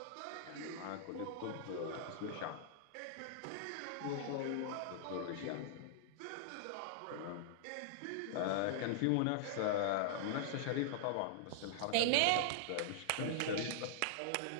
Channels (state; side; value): different; both; correlation -0.01